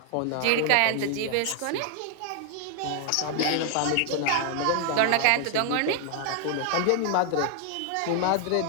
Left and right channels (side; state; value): both; different; correlation 0.00